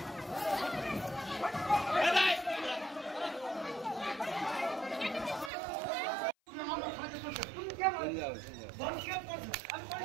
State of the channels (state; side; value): drops out; left; at 5.5 s